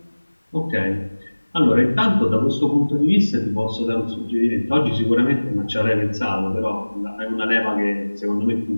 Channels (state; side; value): inverted; both; correlation -1.00